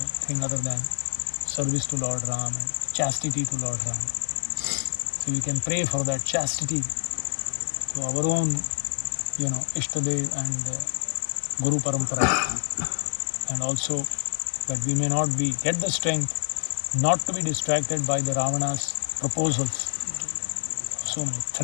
other than service to Lord Ram and chastity to Lord Ram. So we can pray for that chastity to our own, Ishtadev and Guru Parampara, and also that we may not get the strength not to be distracted by the Ravana's proposals. So many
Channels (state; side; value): silent; right; digital silence